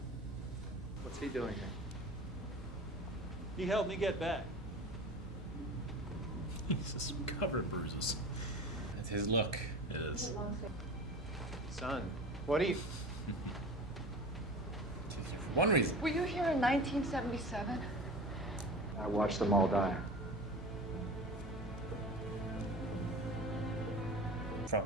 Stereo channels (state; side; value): normal; both; correlation 0.35